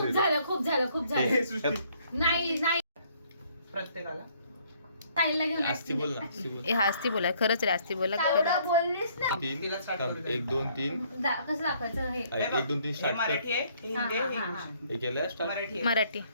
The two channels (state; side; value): inverted; both; correlation -0.64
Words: हिरो? झालं खूप झालं खूप झालं हे सृष्टी. नाही नाही प्रत्येकाला ताईला घेऊन आस्ती बोल ना आस्ती बोल. ए हास्ती बोला खरंच रे आस्ती बोला एवढा बोललीस ना. तीन तिला start करू दे. 1 2 3 कसं दाखवायचं हे 1 2 3 हे स्टार्ट मराठी कर. आहे हे हिंदी आहे हे हा, हा, इंग्लिश हे केलंय स्टार्ट. मराठी आहे. मराठी.